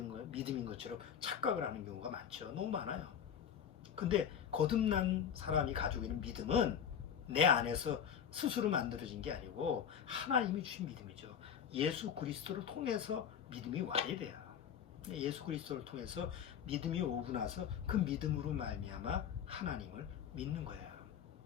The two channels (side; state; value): right; quieter; 8.3 dB